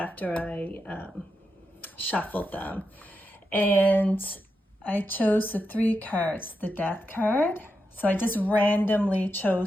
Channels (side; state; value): both; normal; correlation 0.86